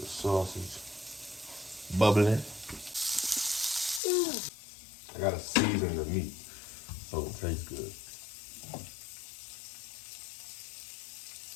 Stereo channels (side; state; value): right; drops out; at 4.0 s